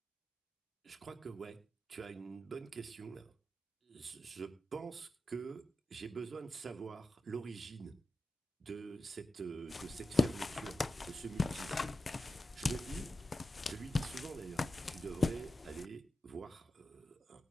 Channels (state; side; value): normal; both; correlation 0.91